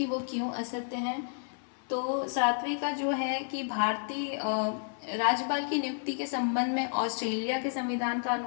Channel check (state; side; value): silent; right; 57 dB below the other